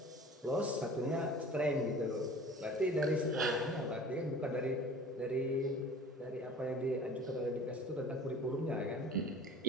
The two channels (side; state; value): both; normal; correlation 0.42